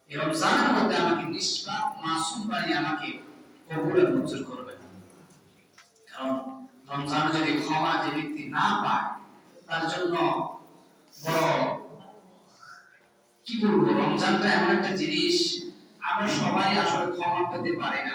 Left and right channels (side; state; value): both; identical; correlation 1.00